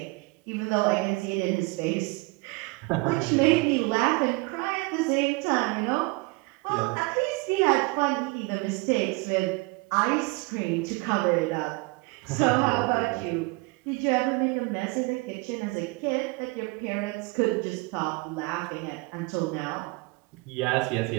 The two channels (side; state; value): left; quieter; 25.7 dB